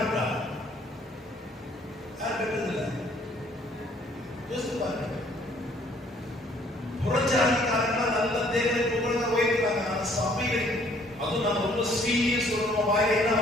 யார் பெற்றதில்லை? யோசித்து பாருங்க. புறஜாதிக்காரர்கள் நல்ல தேவனை புகழ்ந்து உயர்த்துறாங்க. ஆனா சபைகள், அதுவும் நான் ரொம்ப சீரியஸ் சொல்றோம், வாயில என்ன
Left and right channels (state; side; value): normal; both; correlation 0.61